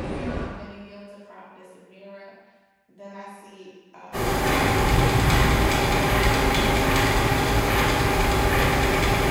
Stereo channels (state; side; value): identical; both; correlation 1.00